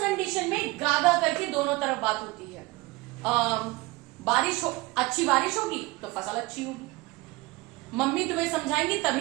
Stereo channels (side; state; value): left; quieter; 21.7 dB